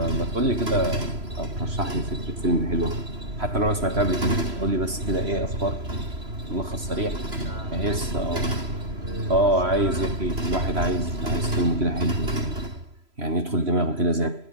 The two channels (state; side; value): late; left; 3.0 ms